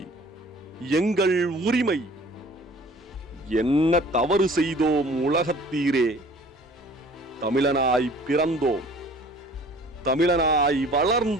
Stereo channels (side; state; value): both; normal; correlation 0.50